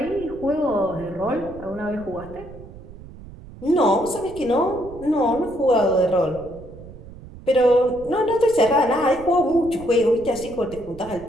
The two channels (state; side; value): noise; right; rumble, 17 dB below the sound